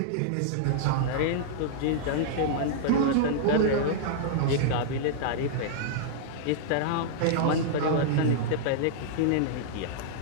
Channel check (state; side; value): different; both; correlation -0.02